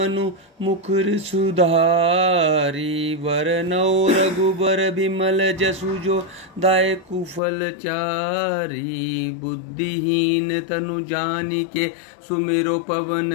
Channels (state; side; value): drops out; right; at 7.4 s